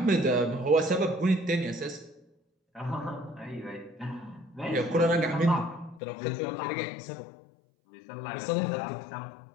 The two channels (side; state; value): right; drops out; at 6.0 s